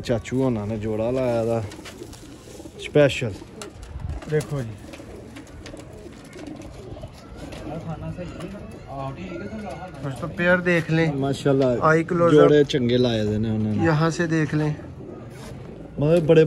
चाचू होना ने जोड़ा लाया था स्पेशल। देखो जी दोस्तों पेयर देख लें माशाल्लाह आई क्लोज जोड़े चंगे लाए दे ने उन्होंने। यहाँ से देख लें मतलब बड़े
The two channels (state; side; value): identical; both; correlation 1.00